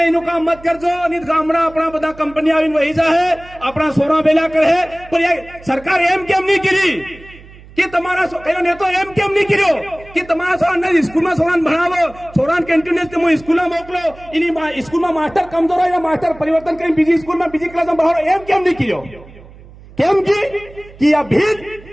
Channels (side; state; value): right; noise; hum, 21 dB below the sound